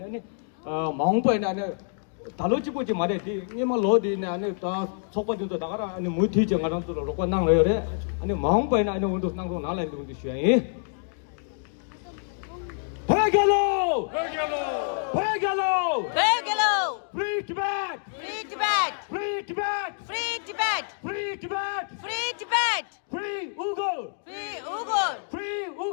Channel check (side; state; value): right; silent; 60 dB below the other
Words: 마음보에 안에 달로지고지 말해 니만 로디네 안에 다 속바도 나가라 아니 무티지 가랑도 로고 나랑래 아니 마음보에 안에 온도 나고 나라이 온도 쉬어야 Begalo! Free Tibet! Free Tibet! Free Tibet! Free Tibet! Free Tibet! Free Tibet! Free Uyghur! Free Uyghur! Free